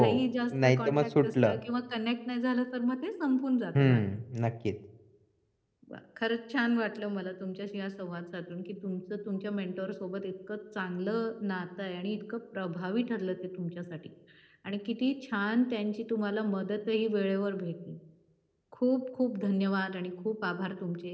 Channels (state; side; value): identical; both; correlation 1.00